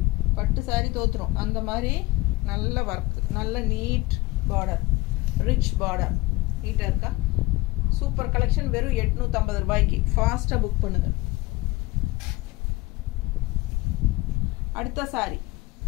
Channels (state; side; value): quieter; right; 20.6 dB